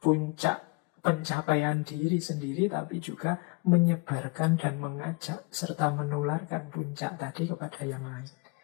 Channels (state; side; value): quieter; right; 27.8 dB